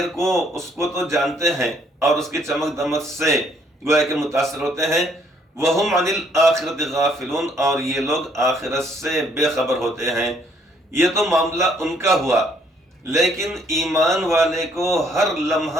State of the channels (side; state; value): both; normal; correlation 0.66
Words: کو، اس کو تو جانتے ہیں اور اس کی چمک دمک سے گویا کہ متاثر ہوتے ہیں، وہم عن الآخرت غافلون، اور یہ لوگ آخرت سے بے خبر ہوتے ہیں۔ یہ تو معاملہ ان کا ہوا، لیکن ایمان والے کو ہر